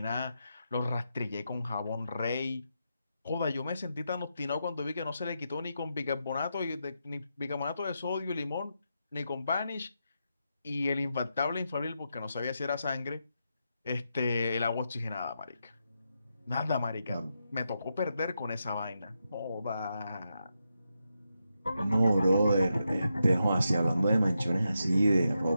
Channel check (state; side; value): inverted; both; correlation -0.85